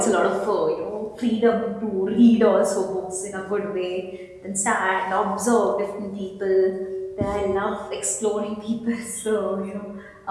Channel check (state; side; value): identical; both; correlation 1.00